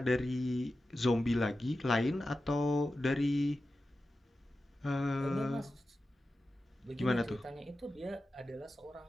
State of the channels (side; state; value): both; normal; correlation 0.93